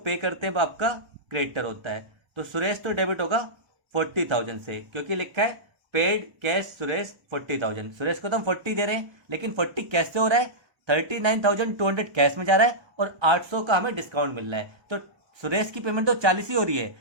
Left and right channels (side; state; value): left; late; 1.2 ms